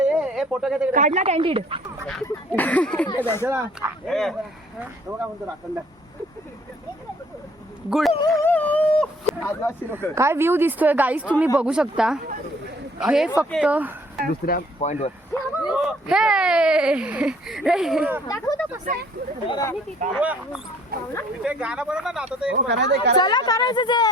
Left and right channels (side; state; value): both; normal; correlation 0.59